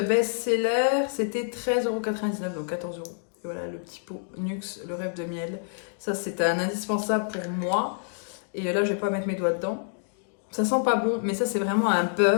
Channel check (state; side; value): silent; right; digital silence